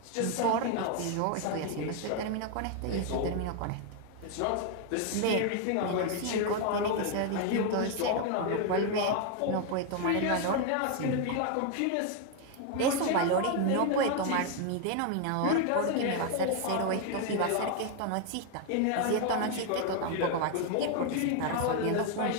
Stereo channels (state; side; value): different; both; correlation 0.01